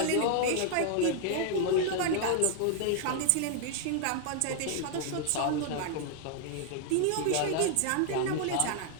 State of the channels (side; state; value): both; different; correlation 0.00